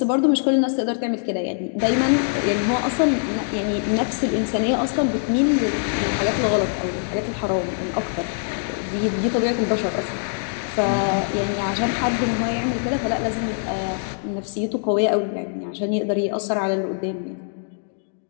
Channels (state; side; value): silent; right; digital silence